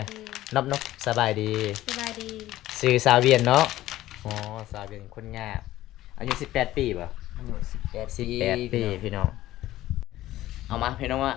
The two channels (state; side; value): quieter; right; 15.1 dB